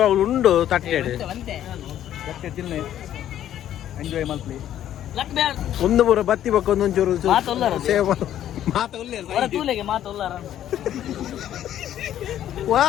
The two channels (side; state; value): right; quieter; 11.4 dB